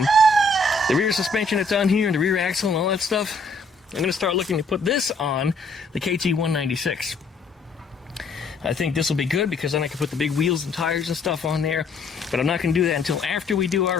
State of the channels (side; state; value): right; quieter; 3.2 dB